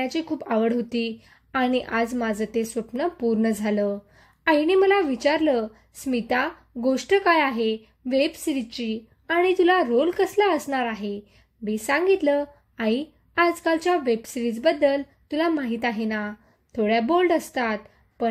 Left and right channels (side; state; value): both; identical; correlation 1.00